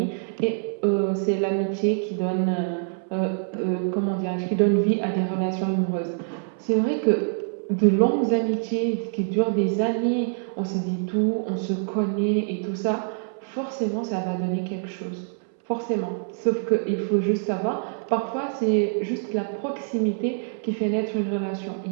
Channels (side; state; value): left; silent; 62 dB below the other